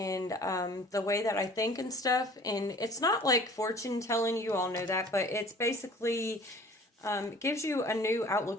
the way that I think and stuff. And it's not like fortune telling, you all know that, but it's basically it gives you a new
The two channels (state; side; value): normal; both; correlation 0.49